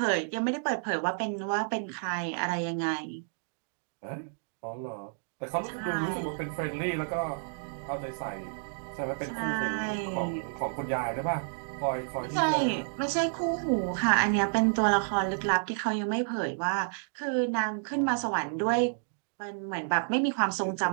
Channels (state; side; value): silent; left; digital silence